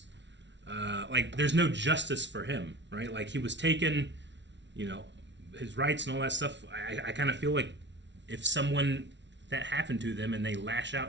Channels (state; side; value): late; left; 0.52 ms